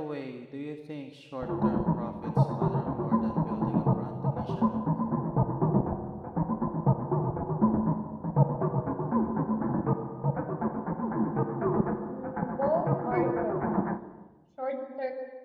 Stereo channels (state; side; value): identical; both; correlation 1.00